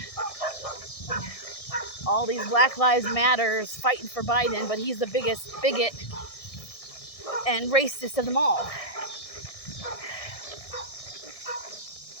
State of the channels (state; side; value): late; right; 1.6 ms